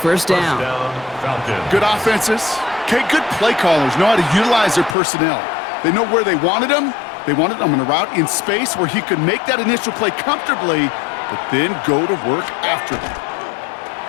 down. Good offenses. Okay, good play callers know how to utilize their personnel. They know where they wanted them. They wanted them on a route in space where he could make that initial play comfortably, but then go to work after them.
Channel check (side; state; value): right; drops out; at 5.0 s